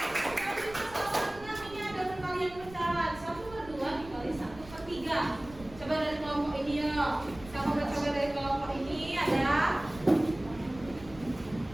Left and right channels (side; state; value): right; noise; rumble, 17 dB below the sound